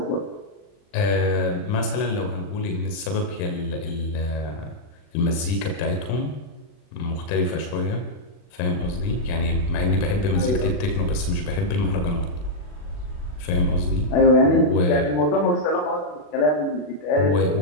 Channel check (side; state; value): right; late; 40 ms